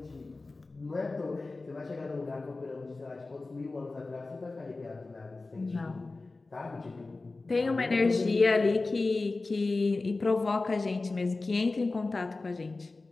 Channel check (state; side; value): quieter; right; 3.5 dB